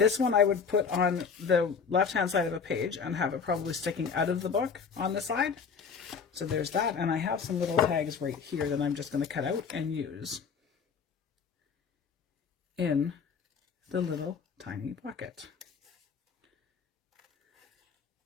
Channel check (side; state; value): right; quieter; 6.0 dB